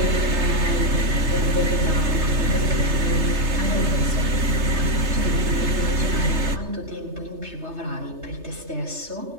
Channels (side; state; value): left; late; 3.3 ms